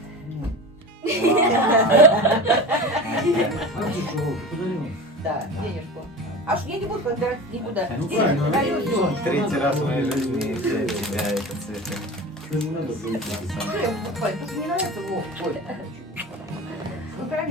Да, денежку. Аж я не буду подбирать никуда. Ну Денег правильно, даю, всё. третий раз в моей жизни для тебя это цветы. Что я покупаю? Тут не нравится, Вов. Ой. Ну,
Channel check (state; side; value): normal; both; correlation 0.32